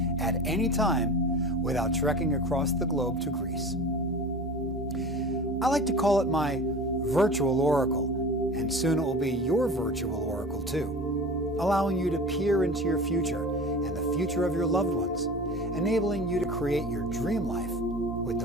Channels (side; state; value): both; normal; correlation 0.36